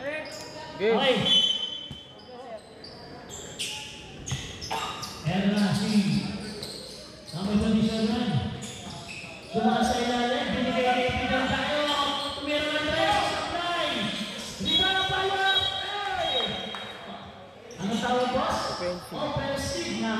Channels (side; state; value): both; identical; correlation 1.00